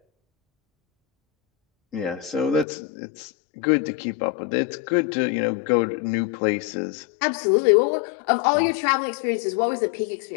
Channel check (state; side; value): drops out; right; at 2.7 s